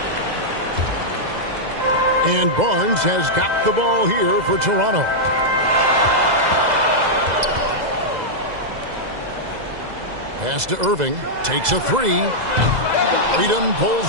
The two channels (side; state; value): left; late; 2.0 ms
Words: And Barnes has got the ball here for Toronto. Pass to Irving. Takes a 3. Freedom